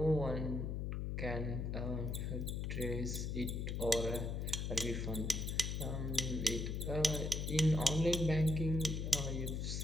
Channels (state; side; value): noise; left; hum, 2 dB below the sound